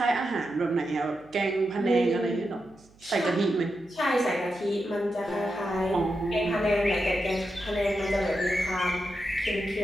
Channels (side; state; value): right; noise; hum, 29 dB below the sound